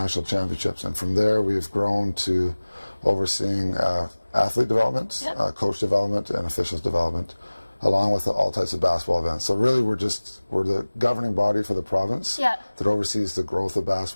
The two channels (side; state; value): both; inverted; correlation -1.00